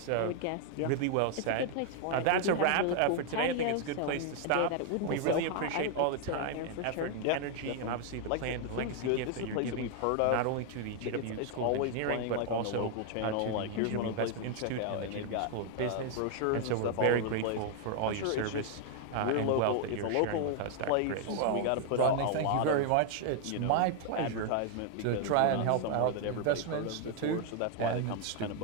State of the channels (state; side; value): different; both; correlation 0.00